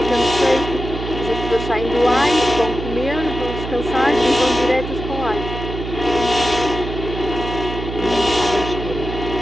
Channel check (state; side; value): noise; right; hum, 7 dB below the sound